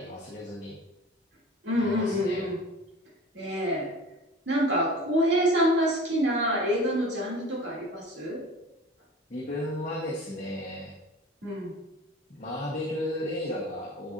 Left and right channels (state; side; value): normal; both; correlation 0.40